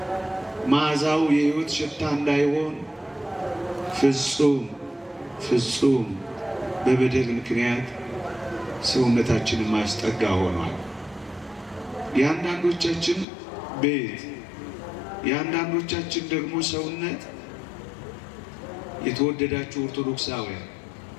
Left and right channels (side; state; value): right; drops out; at 13.2 s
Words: መዓዛው የሕይወት ሽታ እንዳይሆን ፍጹም በበደል ምክንያት ሰውነታችንን ማስጠጋ ሆኗል። የአንዳንዶቻችን ቤት የአንዳንዶቻችን ደግሞ ሰውነት የተወደዳችሁ ኦርቶዶክሳውያን